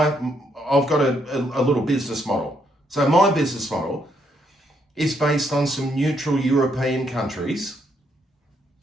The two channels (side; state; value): both; normal; correlation 0.74